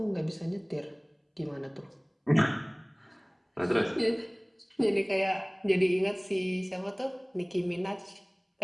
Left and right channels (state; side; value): identical; both; correlation 1.00